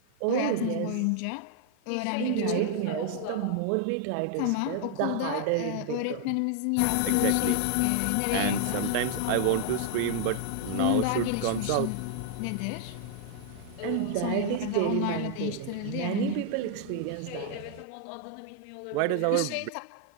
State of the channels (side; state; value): both; different; correlation 0.00